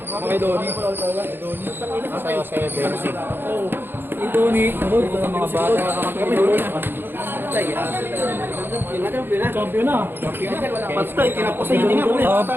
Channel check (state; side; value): late; left; 0.10 ms